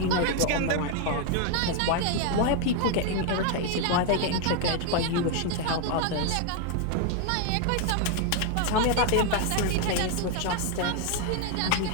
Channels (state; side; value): different; both; correlation 0.01